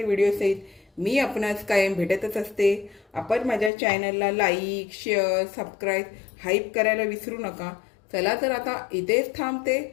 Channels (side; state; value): right; drops out; at 3.7 s